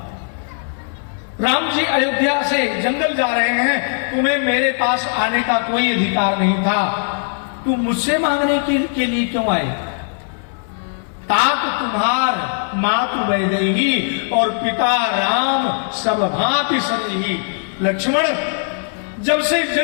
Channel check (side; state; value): right; silent; 66 dB below the other